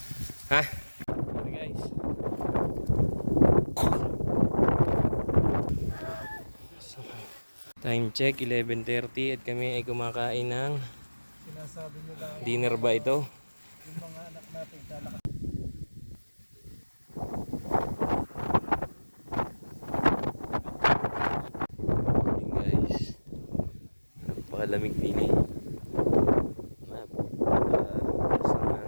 Ha? Okay guys. So, time check 11:30 at kami ay kumakain ng Sinasabi nila dinner ba ito? yung mga anak natin lalakas. Morning guys. Napakalamig din eh.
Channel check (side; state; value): both; inverted; correlation -1.00